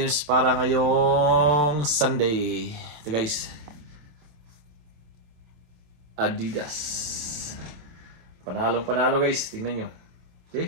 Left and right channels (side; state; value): left; late; 27 ms